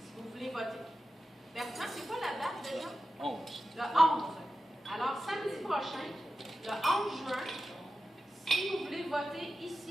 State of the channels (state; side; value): normal; both; correlation 0.92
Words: vous voulez voter. Bertrand, c'est quoi la date déjà? 11. Le 11. Alors, samedi prochain, le 11 juin, si vous voulez voter